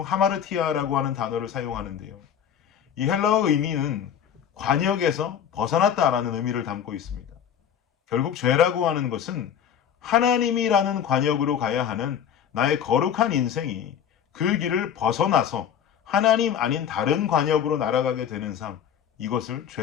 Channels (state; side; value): quieter; right; 8.8 dB